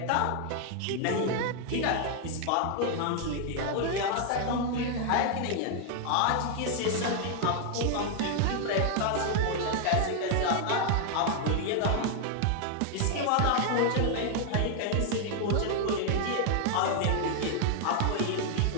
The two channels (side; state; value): both; different; correlation 0.00